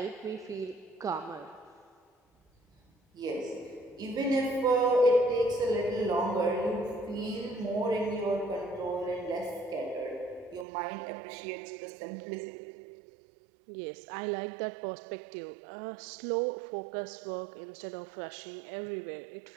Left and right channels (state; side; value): drops out; left; at 10.7 s